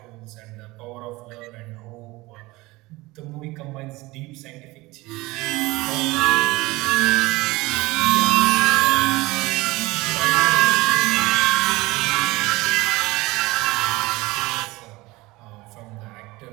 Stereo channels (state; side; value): quieter; left; 21.1 dB